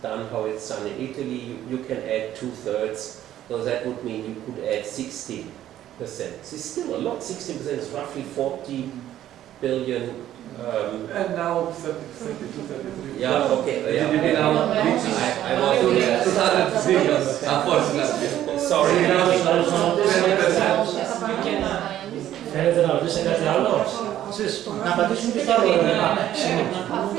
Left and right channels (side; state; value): left; quieter; 12.2 dB